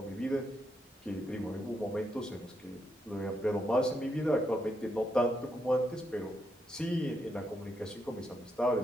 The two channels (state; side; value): normal; both; correlation 0.80